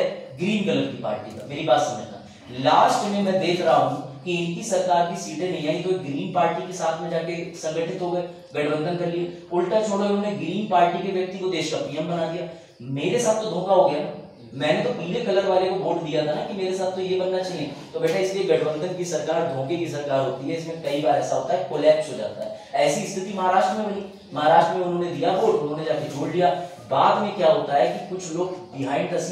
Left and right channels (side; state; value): both; identical; correlation 1.00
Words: ग्रीन कलर की पार्टी का। मेरी बात समझना, लास्ट में मैं देख रहा हूं कि इनकी सरकार की सीटें नहीं आई तो ग्रीन पार्टी के साथ में जाके संगठित हो गए, गठबंधन कर लिए। उल्टा छोड़ो, इन्होंने ग्रीन पार्टी के व्यक्ति को देश का पीएम बना दिया। मेरे साथ तो धोखा हो गया ना। मैंने तो पीले कलर वाले को वोट दिया था ना कि मेरे साथ तो ये बनना चाहिए। तो बेटा इसलिए गठबंधन की सरकार धोखे की सरकार होती है, इसमें कई बार ऐसा होता है कोलैप्स हो जाता है। ऐसी स्थिति महाराष्ट्र में बनी, महाराष्ट्र में उन्होंने दिया वोट, उन्होंने जाके जोड़ लिया। बाद में क्या होता है कि कुछ लोग बिहाइंड द